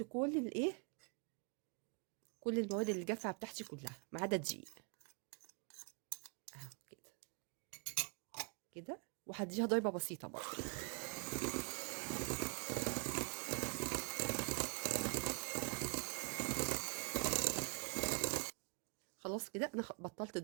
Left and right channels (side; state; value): left; quieter; 34.0 dB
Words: كل الايه، كل المواد اللي جافه بتاعتي كلها ما عدا الدقيق اهو كده كده. وهديها ضربه بسيطه برضه. خلاص كده انا بطلت